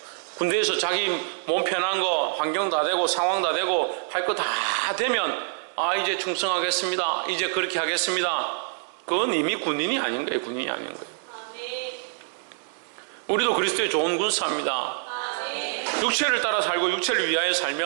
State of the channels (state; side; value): silent; left; digital silence